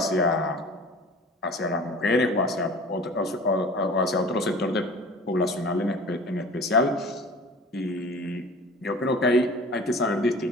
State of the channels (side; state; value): both; normal; correlation 0.42